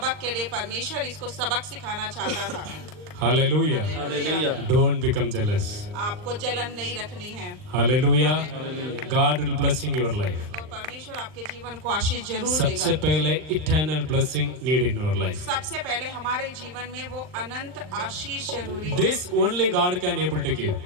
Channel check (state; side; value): late; left; 39 ms